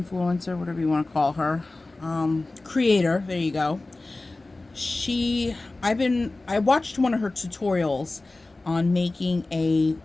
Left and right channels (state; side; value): quieter; right; 3.1 dB